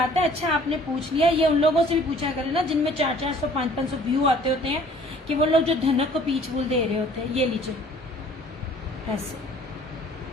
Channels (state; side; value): normal; both; correlation 0.53